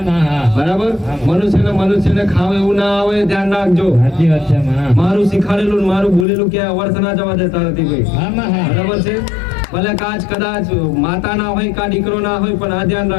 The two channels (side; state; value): right; drops out; at 6.2 s